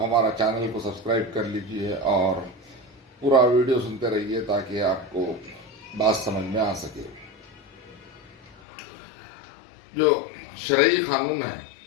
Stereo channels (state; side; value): drops out; right; at 8.6 s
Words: چینل کو سبسکرائب کر لیجئے اور پورا ویڈیو سنتے رہیے تاکہ آپ کو بات سمجھ میں آ سکے۔ جو شرعی قانون ہے